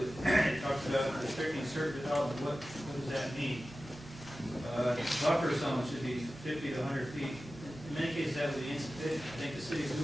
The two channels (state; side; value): normal; both; correlation 0.95